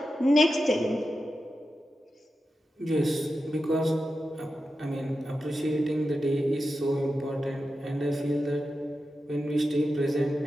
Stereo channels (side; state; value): both; normal; correlation 0.91